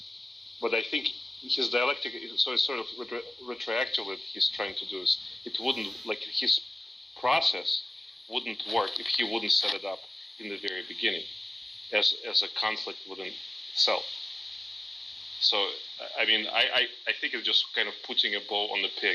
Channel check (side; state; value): both; normal; correlation 0.97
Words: But I think his dialectic, so it's sort of retroactively he's trying to do is, it wouldn't, like his process wouldn't work if he wouldn't set it up in the very beginning as a conflict within itself. So, I mean, I think it's just kind of putting a bow on the